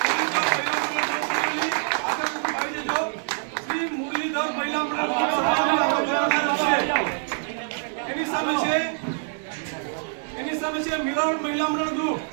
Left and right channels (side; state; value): left; silent; 62 dB below the other